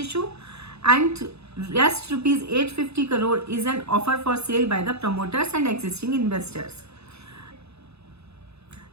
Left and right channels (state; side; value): late; left; 0.79 ms